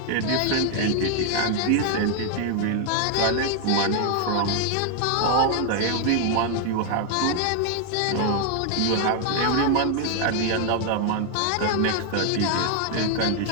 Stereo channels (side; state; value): both; different; correlation 0.00